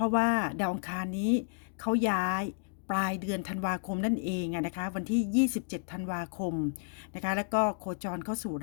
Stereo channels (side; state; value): right; silent; digital silence